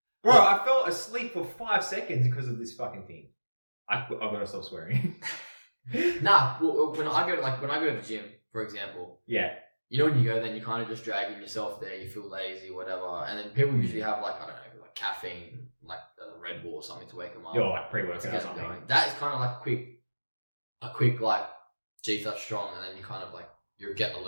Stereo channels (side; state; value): both; inverted; correlation -1.00